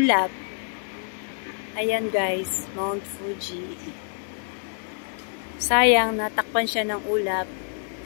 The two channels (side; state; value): right; silent; 61 dB below the other